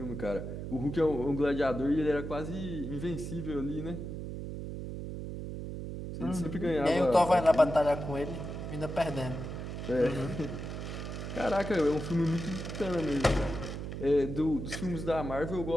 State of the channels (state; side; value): noise; right; hum, 6 dB below the sound